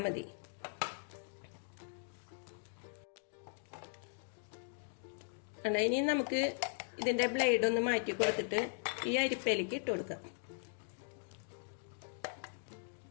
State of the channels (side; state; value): right; silent; digital silence